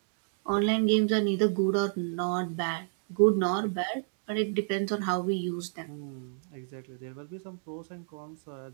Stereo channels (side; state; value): left; silent; digital silence